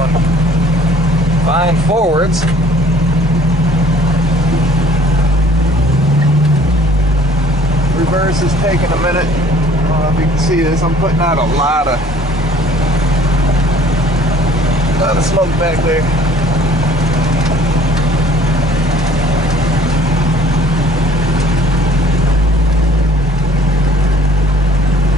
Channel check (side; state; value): both; normal; correlation 0.55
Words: fine forwards. Reverse is taking a minute. I don't know if you can see this. I'm putting out a lot of smoke back there.